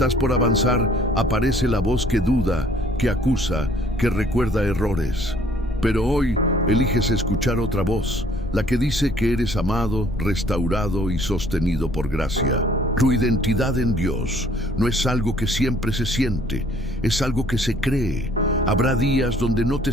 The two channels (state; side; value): noise; left; rumble, 11 dB below the sound